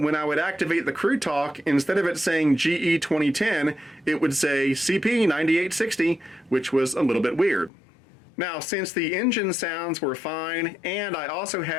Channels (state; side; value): drops out; right; at 7.7 s